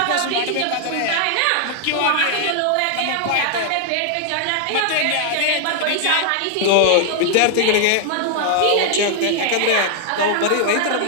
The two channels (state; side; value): different; both; correlation 0.00